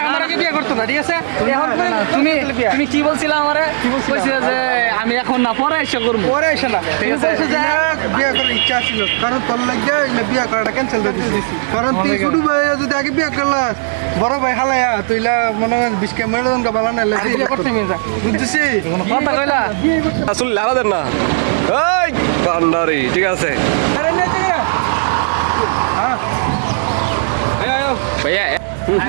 আমার আগে বিয়ে করতো না, ঠিক আছে? এখন তুমি কি বলছিলে আমারে? কইছিলে যে আমি এখন না পরে এসে করবো, পরে এসে না, ঠিক আছে? বিয়ে করার ইচ্ছা ছিল, কারণ তোর লাগে বিয়ে করাটা ক্যান্সেল করে দিয়েছি। কারণ তুই ছোট ভাই যদি আগে বিয়ে করলাস, বড় ভাই হালায়া তুইলা মনে হয় বিস্কে মেরোদন কা বালা না বিয়ে করতে মেয়ে যা বুঝছিস? কথা কইলা আসলে লাগাদের না এই ভান্ডারি, ঠিক আছে ভাইয়া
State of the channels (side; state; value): left; silent; digital silence